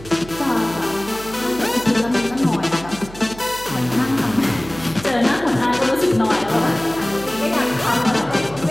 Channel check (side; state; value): right; noise; hum, 17 dB below the sound